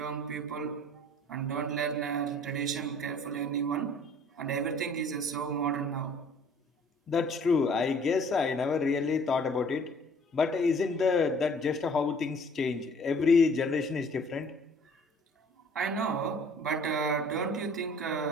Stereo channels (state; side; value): normal; both; correlation 0.54